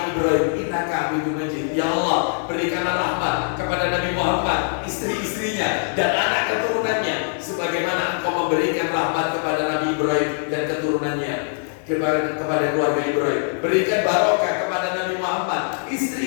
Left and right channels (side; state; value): right; silent; 64 dB below the other